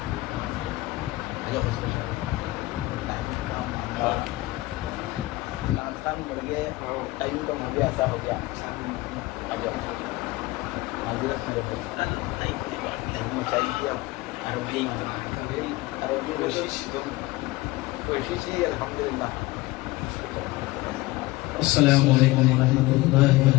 ٹائم کا مجھے ایسا ہو گیا کوشش ہی الحمدللہ۔ السلام علیکم ورحمۃ اللہ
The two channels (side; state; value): right; quieter; 19.8 dB